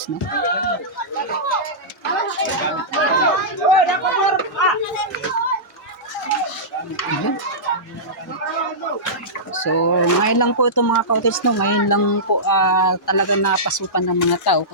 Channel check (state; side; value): normal; both; correlation -0.16